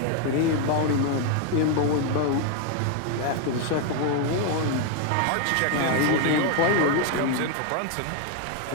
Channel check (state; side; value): different; both; correlation 0.00